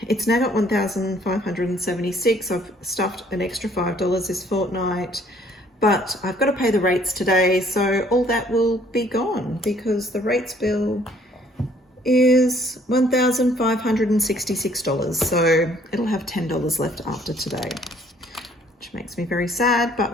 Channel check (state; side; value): normal; both; correlation 0.61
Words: it's now got 1,576. I've stuffed an extra $5 this fortnight, but I've got to pay the rates today, so all that will be gone because the rates bill is $1,566. So it'll have $10 left after today, which makes me very sad, but